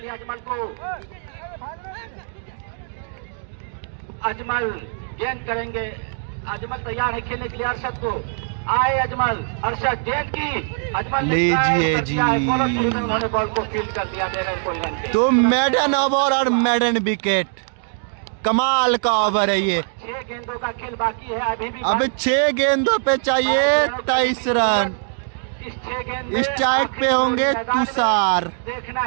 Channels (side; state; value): left; silent; digital silence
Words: अजमल गेंद करेंगे अजमल तैयार है खेलने के लिए अरशद को। आए अजमल, अरशद गेंद की, अजमल लीजिए जी। उन्होंने बॉल को फील्ड कर दिया बगैर कोई रन के। तो मेडन ओवर और मेडन विकेट, कमाल का ओवर है ये। 6 गेंदों का खेल बाकी है अभी भी। अब 6 गेंदों पे चाहिए 23 रन। इस 6 गेंद में स्ट्राइक पे होंगे तुषार। देखना